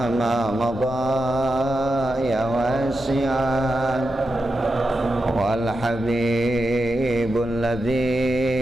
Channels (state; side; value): normal; both; correlation 0.88